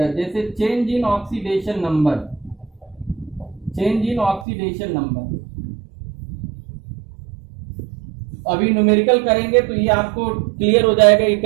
जैसे change in oxidation number, change in oxidation number. अभी न्यूमेरिकल करेंगे तो ये आपको क्लियर हो जाएगा कि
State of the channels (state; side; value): drops out; left; at 4.5 s